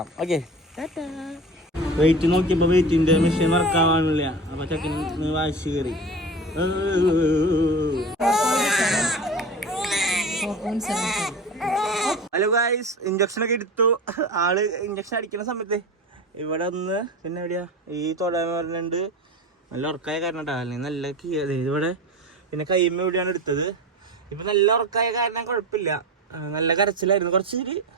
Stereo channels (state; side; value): normal; both; correlation 0.31